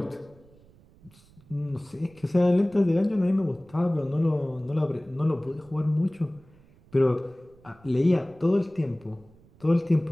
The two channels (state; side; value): noise; right; rumble, 27 dB below the sound